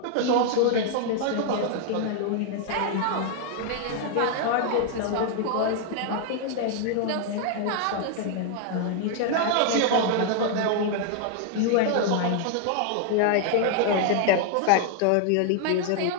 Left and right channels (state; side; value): different; both; correlation 0.00